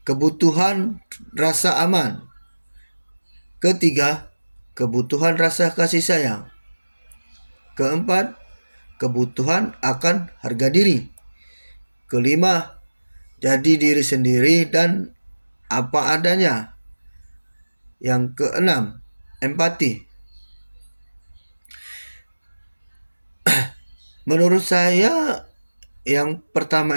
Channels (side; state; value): both; inverted; correlation -1.00